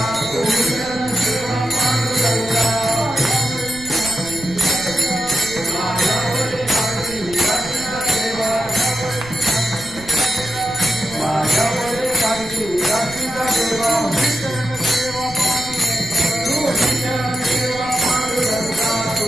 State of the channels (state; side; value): noise; right; rumble, 16 dB below the sound